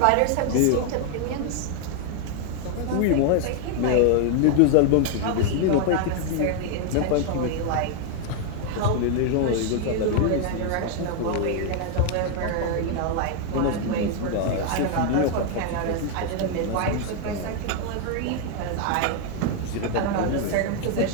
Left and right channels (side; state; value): both; different; correlation 0.00